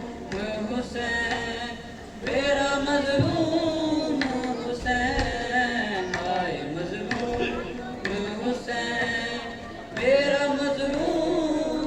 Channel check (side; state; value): both; identical; correlation 1.00